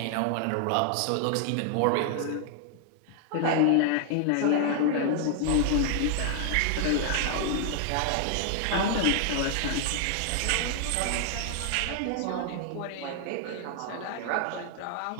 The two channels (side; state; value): both; different; correlation 0.00